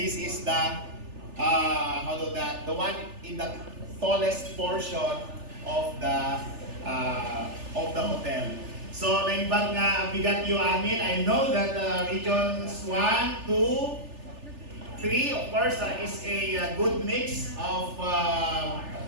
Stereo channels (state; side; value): late; left; 3.4 ms